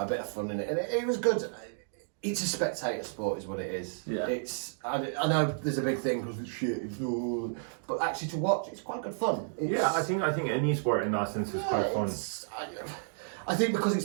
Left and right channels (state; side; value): silent; left; digital silence